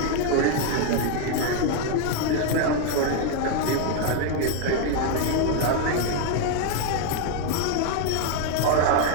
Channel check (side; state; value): both; different; correlation 0.00